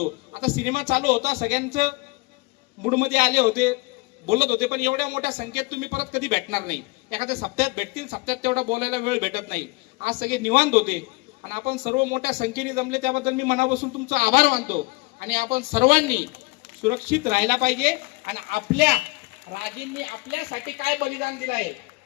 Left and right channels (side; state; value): right; quieter; 25.5 dB